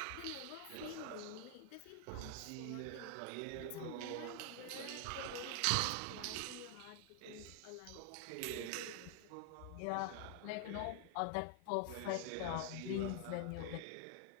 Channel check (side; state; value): both; different; correlation 0.00